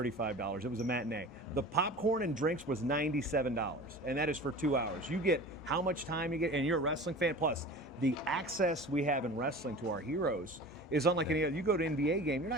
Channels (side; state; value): both; normal; correlation 0.38